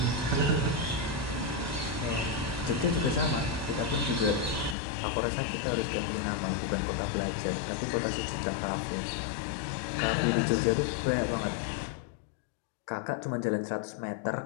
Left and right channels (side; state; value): right; drops out; at 4.8 s